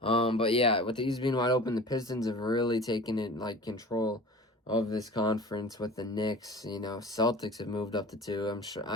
yeah, with the East being wide open, the Pistons have really taken it control of this conference with the Knicks. Celtics have moved up to 2.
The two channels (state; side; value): normal; both; correlation 0.39